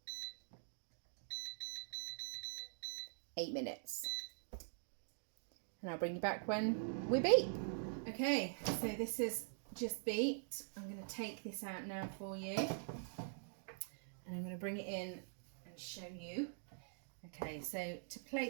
8 minutes. And I'll bring you back when we beep. Okay, so this is just beeped. I'm going to take this out now for you. And I'm going to bring it in and show you. Okay, so to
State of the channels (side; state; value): left; silent; digital silence